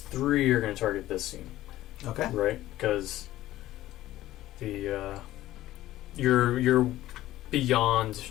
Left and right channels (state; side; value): quieter; right; 15.1 dB